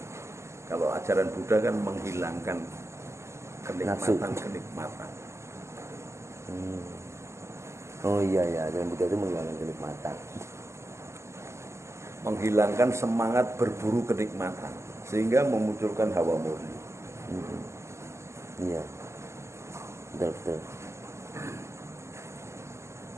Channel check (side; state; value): left; late; 0.13 ms